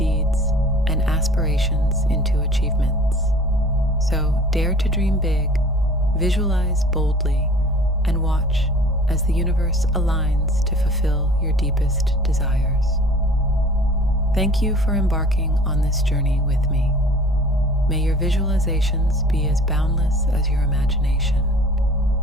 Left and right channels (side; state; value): both; normal; correlation 0.46